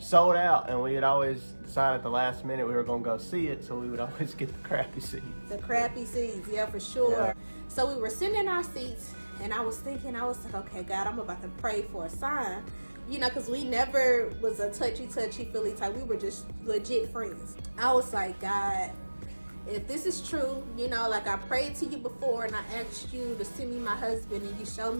out. And we would always decide at the last minute we were going to go see it. So we would always get the crappy seats. The crappy seats, yeah, for sure. Yeah. So we were sitting in our seats and I was thinking, I was like, okay, God, I'm about to pray for a sign. Because we never was a touchy feely type. We were just legit friends. I was like, God, if this is true, like I prayed to you before and I asked you to send me my husband and you showed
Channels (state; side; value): inverted; both; correlation -1.00